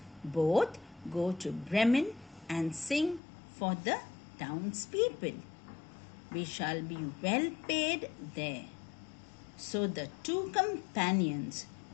both go to Bremen and sing for the townspeople. We shall be well paid there. So the two companions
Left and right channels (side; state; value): right; drops out; at 3.2 s